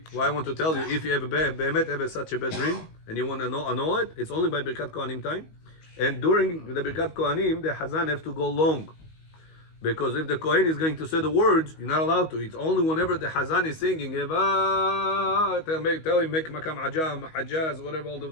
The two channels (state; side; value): late; right; 19 ms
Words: What I want to tell you, if you have such a bad dream and you want to annul it, it's only by Birkat Kohanim time. And during the Birkat Kohanim, the Chazan have to go long. Because if the Kohen is going to say the words, you're not allowed to. It's only whenever the Chazan is singing, tell him, make Makam Ajam, Hajjaz, whatever, all